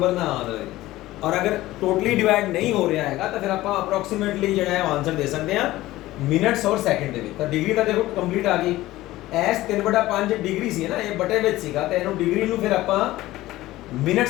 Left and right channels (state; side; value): quieter; right; 16.8 dB